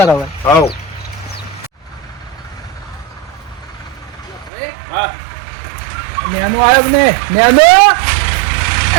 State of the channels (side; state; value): left; drops out; at 4.5 s